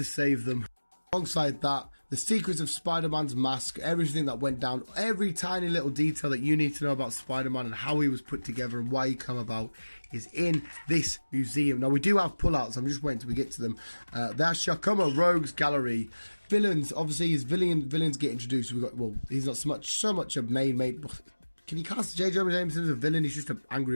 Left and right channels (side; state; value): both; inverted; correlation -1.00